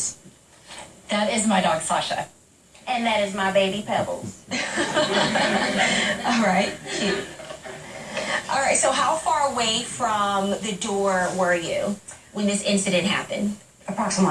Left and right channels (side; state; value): both; identical; correlation 1.00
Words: That is my dog, Sasha. And that is my baby Pebbles. All right. Cute. All right, so how far away from the door were you when this incident happened?